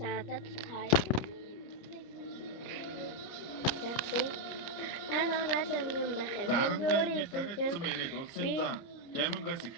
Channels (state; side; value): late; right; 30 ms